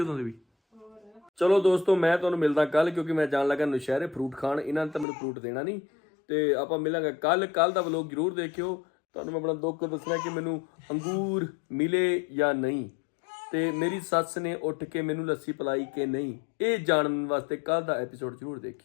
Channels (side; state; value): right; drops out; at 5.1 s